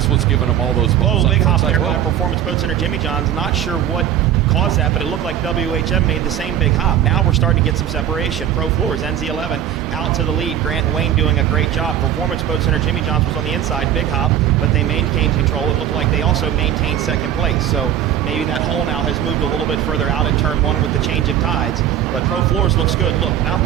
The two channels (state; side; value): quieter; left; 10.3 dB